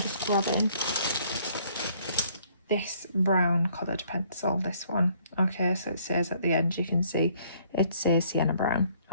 grabbing this brown coloured pencil, this one. Okay, so it says at the end, you can see it says sienna brown.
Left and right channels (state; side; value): inverted; both; correlation -0.62